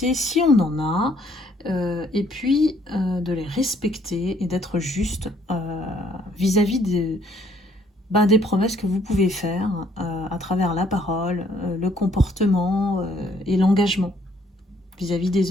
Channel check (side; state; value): both; normal; correlation 0.65